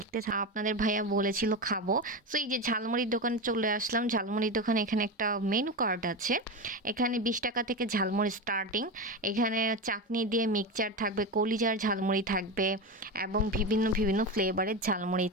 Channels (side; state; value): both; normal; correlation 0.19